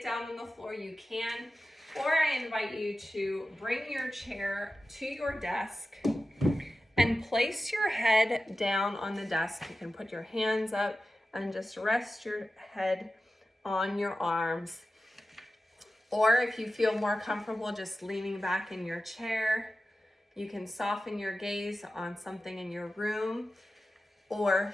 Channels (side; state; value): both; normal; correlation 0.93